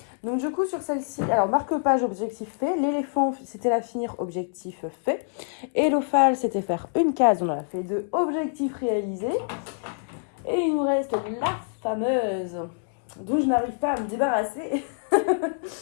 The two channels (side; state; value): right; silent; digital silence